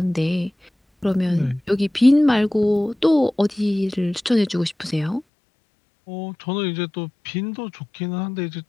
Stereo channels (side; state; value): right; drops out; at 5.2 s